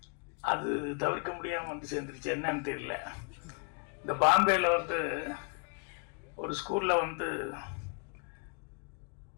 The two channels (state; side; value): quieter; right; 37.8 dB